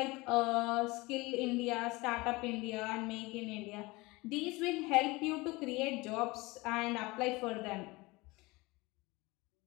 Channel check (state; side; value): quieter; right; 23.0 dB